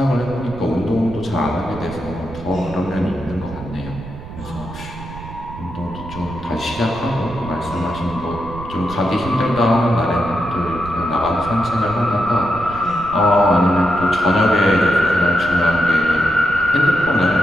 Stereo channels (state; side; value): noise; right; rumble, 13 dB below the sound